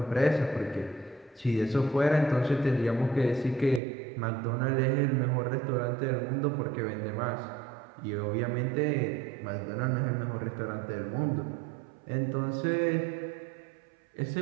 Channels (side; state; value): left; drops out; at 3.8 s